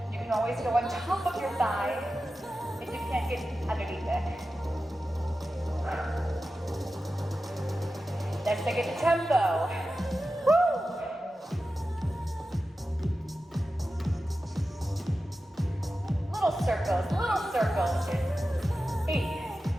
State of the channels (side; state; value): both; normal; correlation 0.93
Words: You can always go on top of your thigh if you can't get underneath it. Let's take it to tempo. Woo! Little circles. 8,